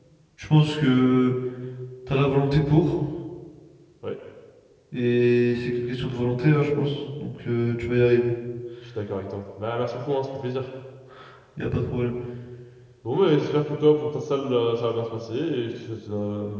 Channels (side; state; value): both; identical; correlation 1.00